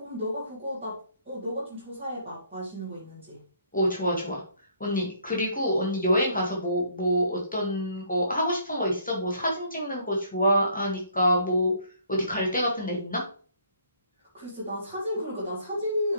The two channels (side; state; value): both; inverted; correlation -0.62